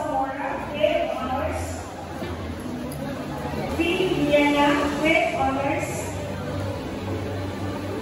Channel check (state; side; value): identical; both; correlation 1.00